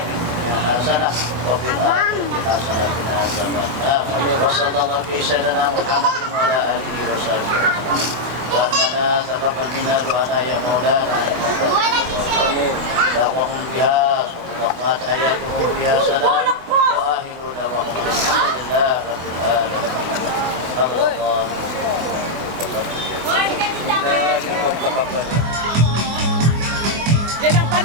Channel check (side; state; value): left; late; 24 ms